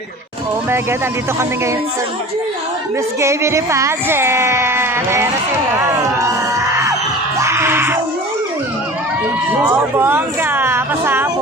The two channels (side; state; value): both; normal; correlation 0.39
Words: Oh my God, andito kami ngayon sa Miss Gay Beauty Pageant. Ayan na sila. Oh, bongga.